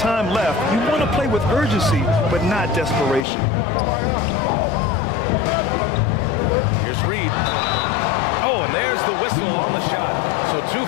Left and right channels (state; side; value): drops out; right; at 3.2 s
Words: left, you want to play with urgency, but not desperation. Here's Reed. Oh, and there's the whistle on the shot. So 2